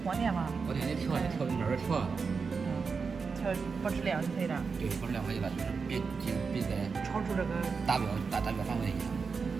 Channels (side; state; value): left; quieter; 5.1 dB